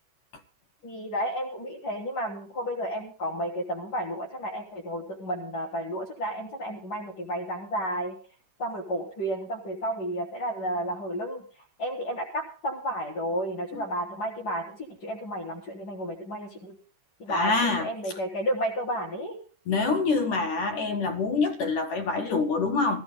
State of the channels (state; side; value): late; right; 11 ms